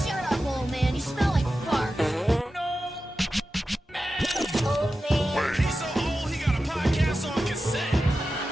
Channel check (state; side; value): normal; both; correlation 0.93